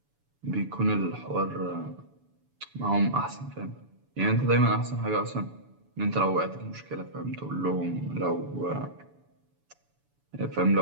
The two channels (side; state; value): left; late; 7.0 ms